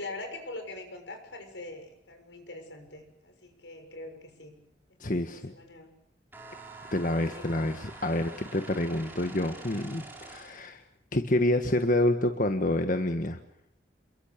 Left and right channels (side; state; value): both; normal; correlation 0.50